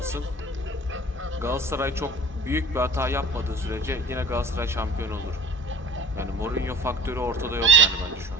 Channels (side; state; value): both; normal; correlation 0.44